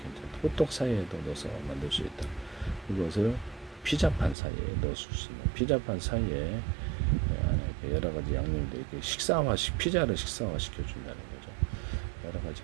호떡 사이에도 넣어서 만들 수 있다. 이것을 피자판 사이에 넣을 수 있는 피자판 사이에 여러 가지 양념들 이렇게 피자를 식사화 시켜준다는 거죠. 여러 가지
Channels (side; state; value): left; drops out; at 4.4 s